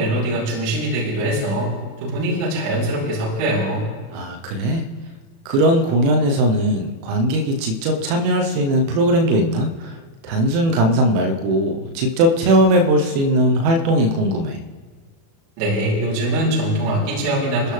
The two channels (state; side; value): late; left; 36 ms